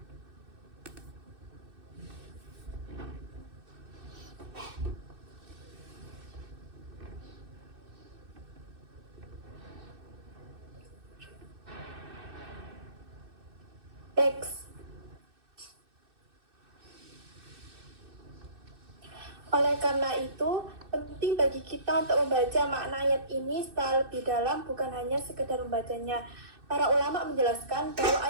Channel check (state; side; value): late; left; 2.6 ms